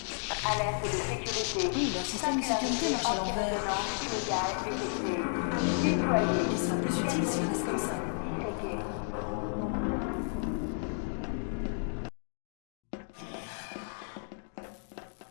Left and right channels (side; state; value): right; silent; 56 dB below the other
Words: Alerte de sécurité. Oui, leur système de sécurité marche à l'envers. Déployé. Il sera plus utile s'il reste comme ça. Checké.